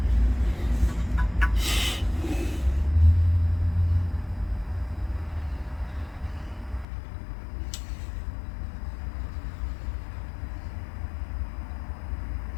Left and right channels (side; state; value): right; drops out; at 6.9 s